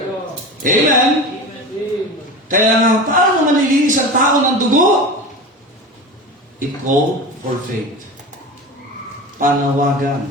Amen? Kaya nga, paano malilinis ang tao ng dugo? It called for faith. Panawagan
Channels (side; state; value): both; normal; correlation 0.30